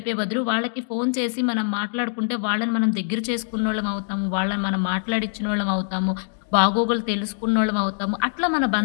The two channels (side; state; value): right; silent; digital silence